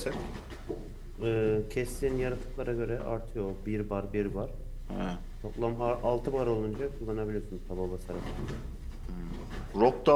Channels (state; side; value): identical; both; correlation 1.00